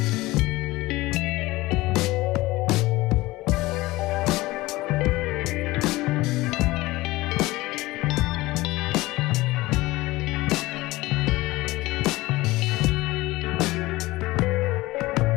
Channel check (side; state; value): right; quieter; 19.5 dB